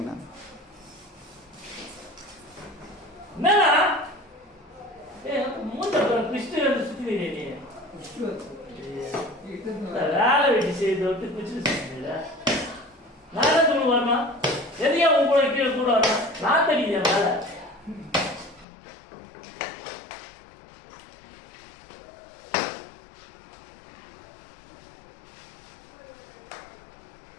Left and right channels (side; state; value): right; drops out; at 18.7 s